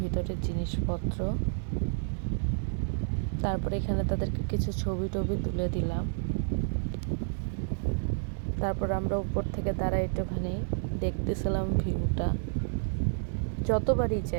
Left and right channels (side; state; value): left; silent; digital silence